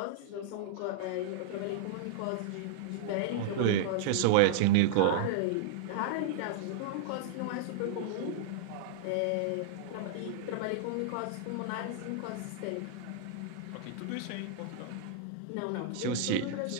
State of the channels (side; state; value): both; different; correlation -0.01